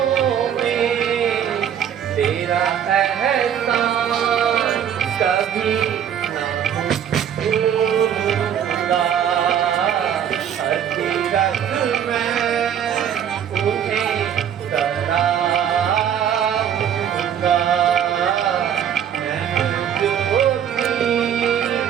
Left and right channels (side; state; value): left; quieter; 9.1 dB